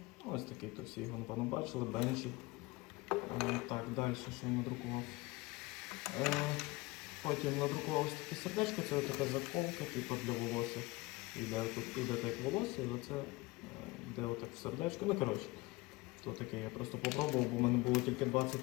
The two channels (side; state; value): right; quieter; 22.2 dB